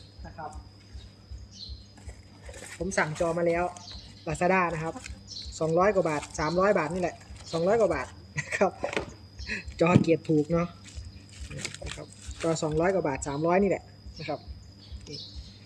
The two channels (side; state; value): both; identical; correlation 1.00